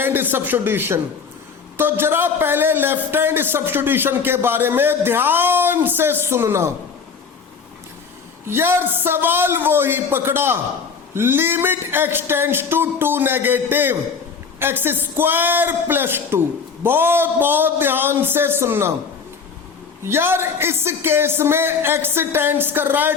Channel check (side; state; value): right; quieter; 5.7 dB